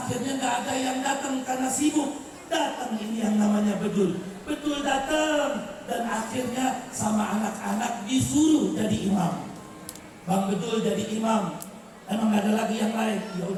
nggak ada yang datang karena sibuk. Datang ini yang namanya bedul datang, dan akhirnya sama anak-anak disuruh jadi imam. Bang Bedul jadi imam. Emang gak ada lagi yang lain? Ya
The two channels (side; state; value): both; identical; correlation 1.00